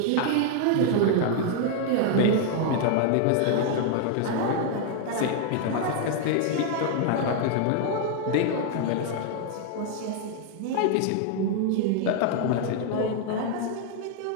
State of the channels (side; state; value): both; different; correlation 0.00